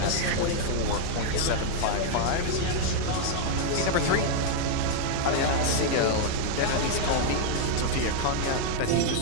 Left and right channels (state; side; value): different; both; correlation -0.01